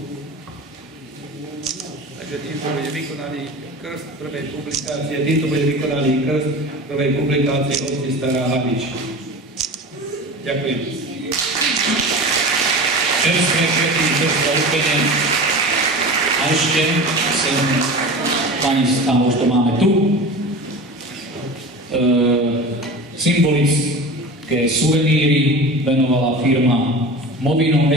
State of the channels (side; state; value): both; normal; correlation 0.33